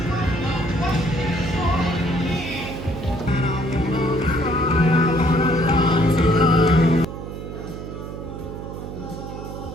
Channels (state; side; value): noise; right; hum, 9 dB below the sound